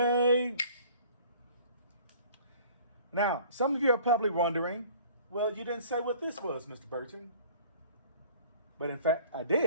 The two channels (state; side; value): inverted; both; correlation -0.50